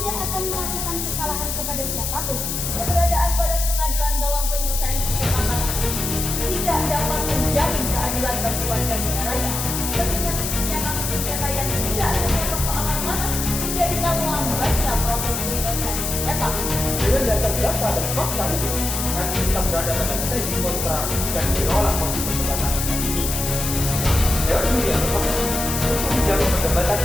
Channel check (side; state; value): left; noise; hiss, 3 dB below the sound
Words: akan melakukan kesalahan kepada siapapun. Keberadaan badan pengadilan dalam penyelesaian sengketa tanah tidak dapat menjamin keadilan bagi warga negaranya. Mengingat tingginya kasus sengketa yang tidak hanya persoalan tanah menjadikan lambatnya proses penyelesaian sengketa. Dengan dasar data dan fakta itu, kami kita berada pada strategi kontra dan menolak posisi perdebatan ini. Dewan Juri yang tepat untuk menjamin perdebatan